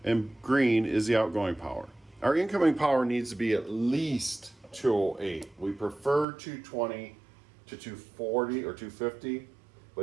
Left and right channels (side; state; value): left; drops out; at 6.2 s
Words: and green is the outgoing power. Our incoming power needs to be at least 208. We prefer 220 to 240 or 250,